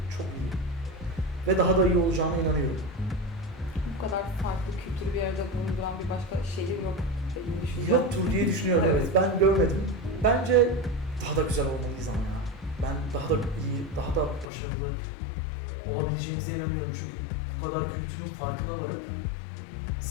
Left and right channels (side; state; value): right; drops out; at 14.5 s